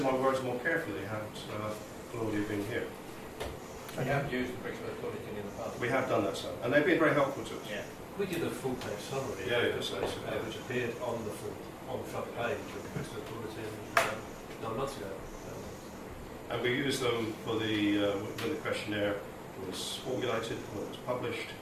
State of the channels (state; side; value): identical; both; correlation 1.00